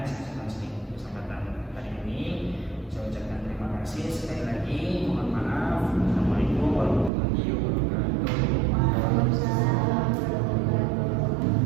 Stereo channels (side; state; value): left; drops out; at 7.1 s